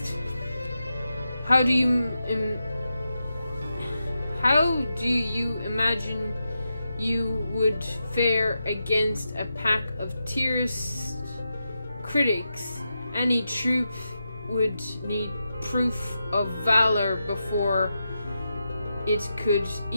How do you imagine you would fare against a pack of tierce critics? Any troop would need proof of valor before it could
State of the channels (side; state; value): both; inverted; correlation -0.88